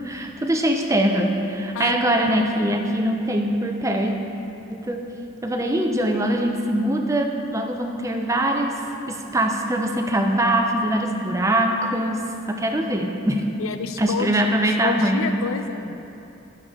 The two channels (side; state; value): both; normal; correlation 0.52